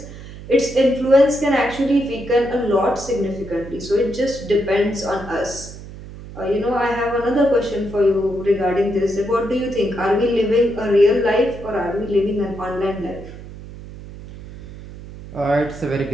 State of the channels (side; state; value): right; noise; hum, 14 dB below the sound